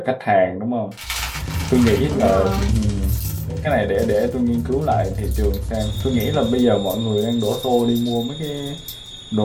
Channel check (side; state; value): both; identical; correlation 1.00